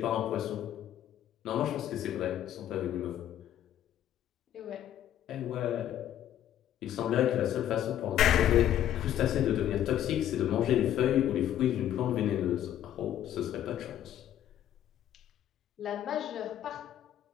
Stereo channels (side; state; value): right; quieter; 11.3 dB